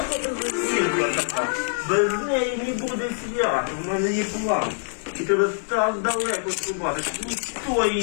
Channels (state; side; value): silent; right; digital silence